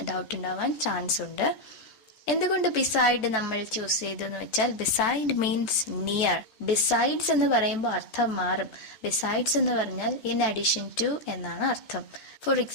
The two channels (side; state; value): right; late; 13 ms